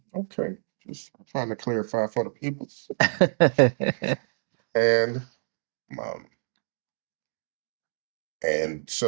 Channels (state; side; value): silent; left; digital silence